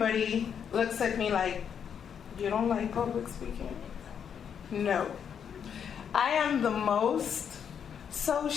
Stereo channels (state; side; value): quieter; right; 7.8 dB